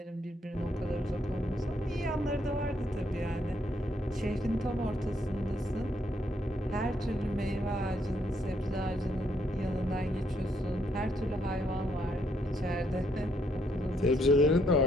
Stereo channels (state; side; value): normal; both; correlation 0.73